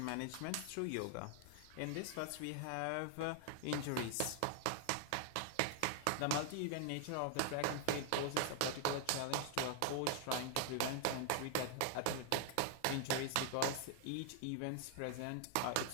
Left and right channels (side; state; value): both; different; correlation 0.00